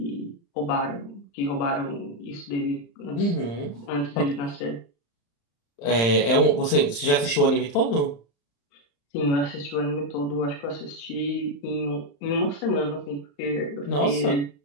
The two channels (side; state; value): right; late; 35 ms